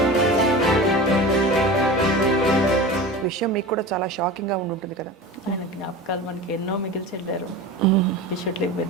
విషయం మీకు కూడా చాలా షాకింగ్ గా ఉంటుంది కదా. ఆయన జ్ఞాపకాలు మనకి ఎన్నో మిగిల్చి వెళ్ళారు. We should live with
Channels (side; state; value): both; normal; correlation 0.32